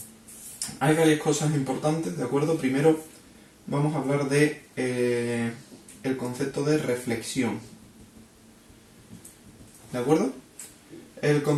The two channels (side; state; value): both; identical; correlation 1.00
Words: Hay varias cosas importantes, ¿de acuerdo? Primero vamos a hablar de el concepto de reflexión, ¿de acuerdo? El